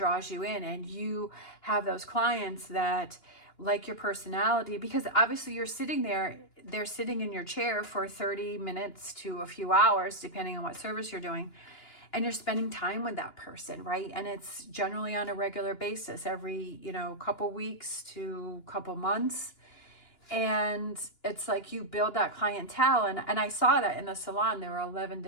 you in, and you have those clients that like your personality, because obviously you're sitting there, they're sitting in your chair for 30 minutes to a few hours, depending on what service you're doing, and you're spending time with that person, right? And it's generally on a regular basis, every, couple weeks to couple months. And it's like you build that clientele. And I saw that in the salon, there were 11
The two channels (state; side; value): late; right; 2.9 ms